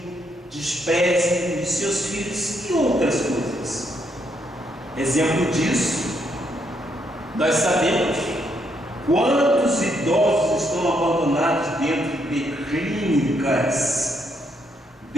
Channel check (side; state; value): both; normal; correlation 0.75